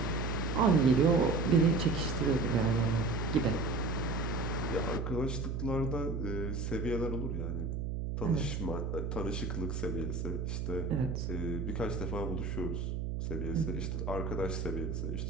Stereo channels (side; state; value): right; noise; hum, 2 dB below the sound